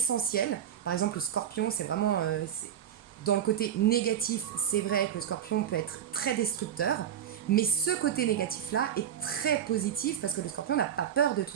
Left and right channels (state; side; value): quieter; left; 9.6 dB